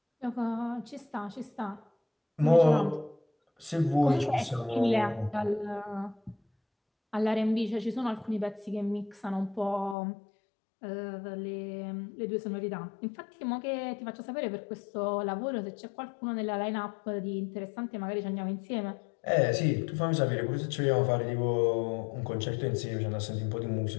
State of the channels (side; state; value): right; drops out; at 10.0 s